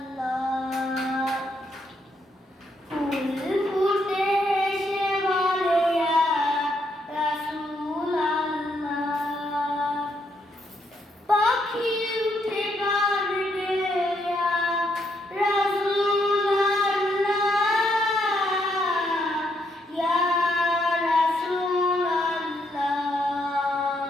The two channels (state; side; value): normal; both; correlation 0.75